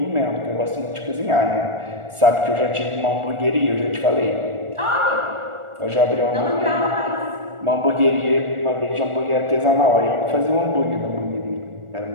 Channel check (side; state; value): left; late; 1.4 ms